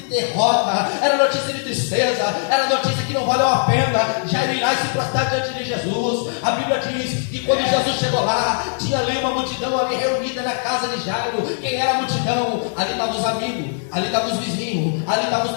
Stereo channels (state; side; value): silent; right; 65 dB below the other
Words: derrota, era notícia de tristeza, era notícia que não valeu a pena Jairo ir lá e se prostrar diante de Jesus. A Bíblia diz que quando Jesus chegou lá, tinha ali uma multidão ali reunida na casa de Jairo. Quem era a multidão? Ali estavam os amigos, ali estavam os vizinhos, ali estavam os